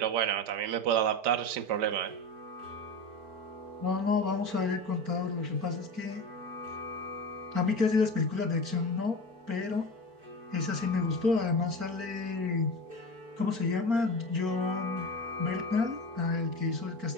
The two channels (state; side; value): late; left; 4.4 ms